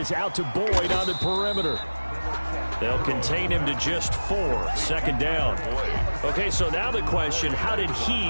out to Boyd on the perimeter. They'll contain him to just 4. 2nd down. Okay, so now the question, how did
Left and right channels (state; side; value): inverted; both; correlation -1.00